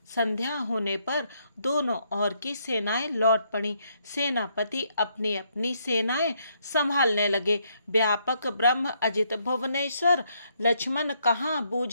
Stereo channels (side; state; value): both; inverted; correlation -0.73